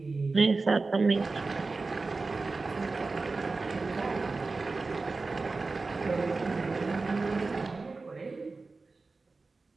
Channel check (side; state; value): left; quieter; 3.8 dB